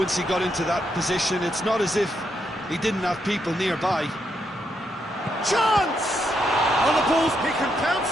he got into that position. It's not as if he didn't have people nearby. Chance! On the balls, he can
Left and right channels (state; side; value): normal; both; correlation 0.79